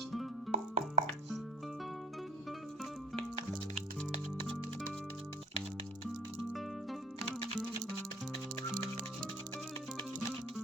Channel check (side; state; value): both; normal; correlation 0.50